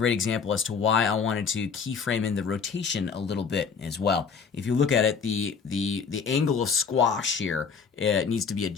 example as to why I wanted to keyframe in the rotation a little bit as well. If you look at it, the angle of squash here, it needs to be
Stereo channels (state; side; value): quieter; right; 5.8 dB